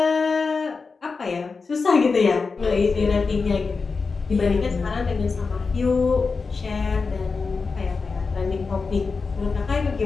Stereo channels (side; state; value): right; quieter; 4.6 dB